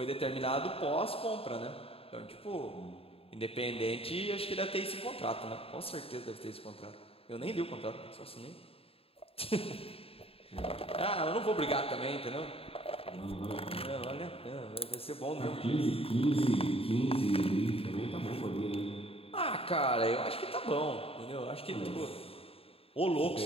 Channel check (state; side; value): late; right; 0.27 ms